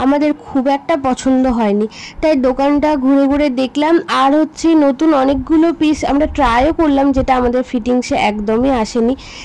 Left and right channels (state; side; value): identical; both; correlation 1.00